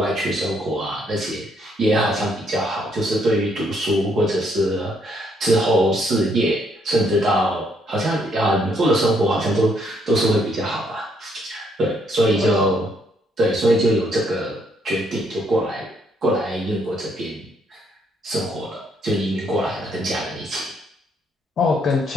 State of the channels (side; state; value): both; normal; correlation 0.71